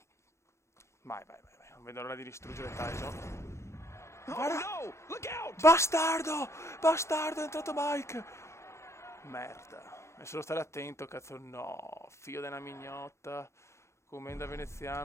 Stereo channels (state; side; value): late; right; 0.13 ms